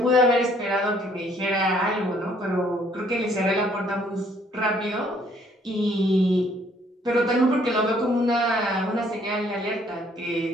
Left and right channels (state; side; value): normal; both; correlation 0.63